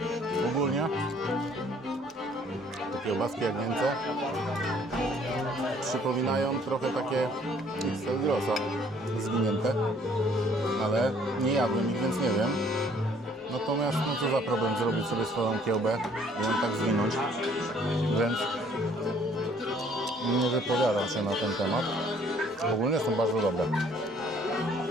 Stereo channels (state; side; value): normal; both; correlation 0.60